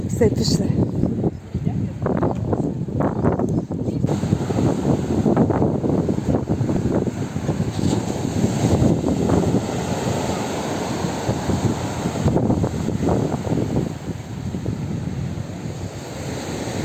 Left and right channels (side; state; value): both; identical; correlation 1.00